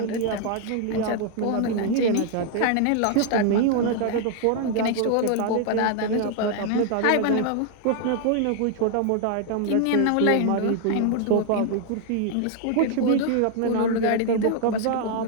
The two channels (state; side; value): different; both; correlation 0.00